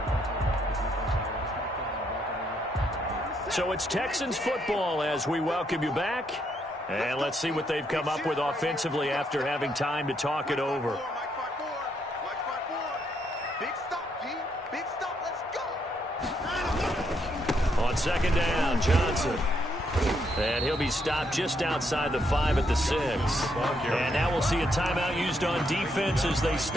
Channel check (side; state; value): both; normal; correlation 0.75